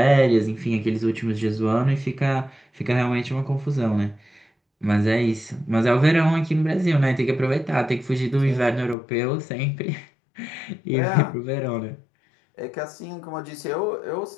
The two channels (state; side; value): drops out; right; at 9.0 s